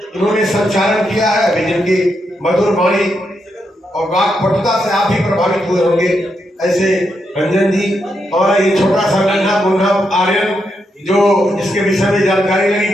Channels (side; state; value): both; normal; correlation 0.82